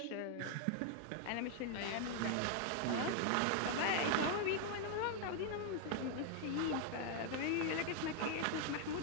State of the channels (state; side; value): different; both; correlation 0.00